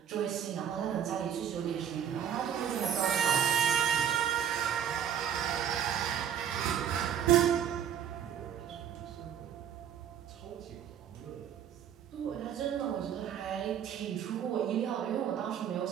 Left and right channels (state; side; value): quieter; left; 9.2 dB